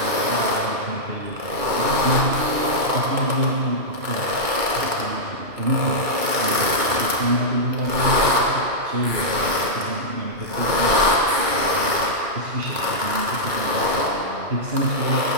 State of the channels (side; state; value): left; late; 2.2 ms